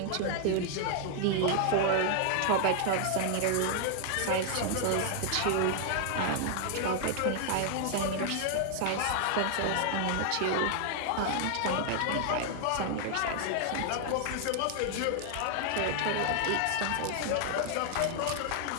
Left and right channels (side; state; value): both; different; correlation 0.00